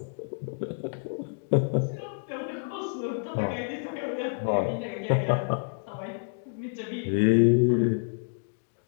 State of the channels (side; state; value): right; silent; digital silence